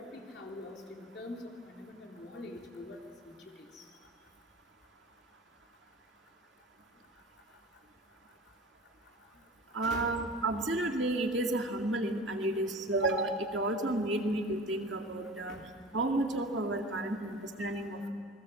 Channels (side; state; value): both; normal; correlation 0.38